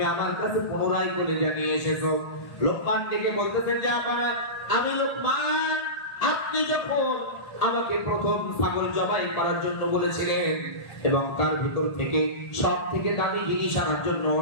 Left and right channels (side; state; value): right; late; 1.7 ms